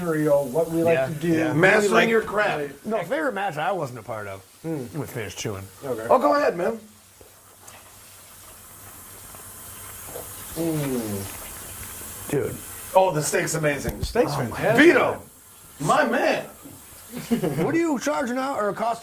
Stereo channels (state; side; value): identical; both; correlation 1.00